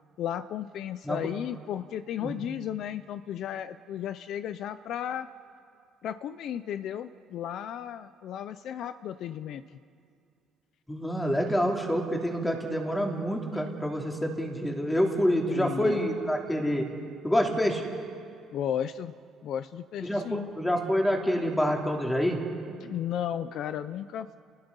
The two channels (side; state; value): both; normal; correlation 0.83